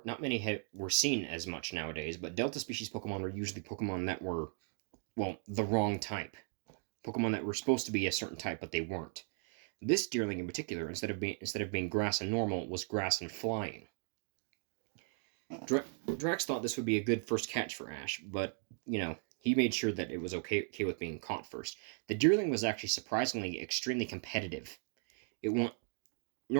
seen as much nowadays, but Delta species Pokemon were usually Pokemon that were, well, the wrong type. Pokemon that were supposed to be a certain type, but they weren't. This Deerling in particular, instead of being grass and normal, was grass and flying. Drax thought this would be a good first catch for Ash, but, he made sure that it was okay with being caught first. The Deerling was actually surprisingly extremely competitive.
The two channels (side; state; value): left; silent; 53 dB below the other